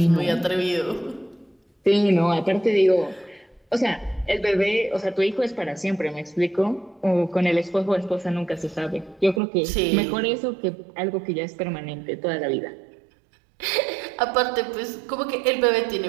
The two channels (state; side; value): drops out; left; at 9.4 s